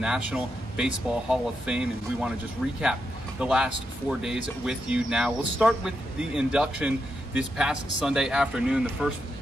Baseball Hall of Fame, and we want to just recap the last 4 days with you now. We'll start with the induction this past Sunday afternoon. The first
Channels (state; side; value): normal; both; correlation 0.84